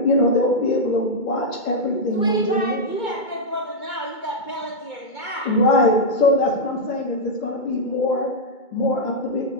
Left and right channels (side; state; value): right; late; 2.2 ms